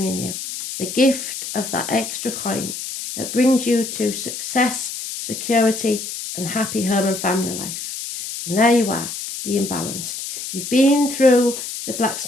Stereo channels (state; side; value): noise; left; hiss, 7 dB below the sound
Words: you. The gift of that extra coin that brings you to success, security and happy home and family life. And there you are, being balanced. You've been through the